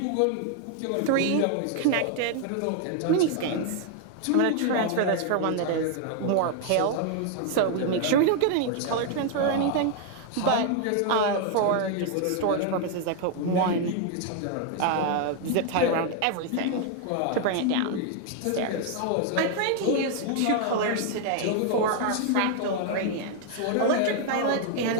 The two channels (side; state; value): both; different; correlation 0.00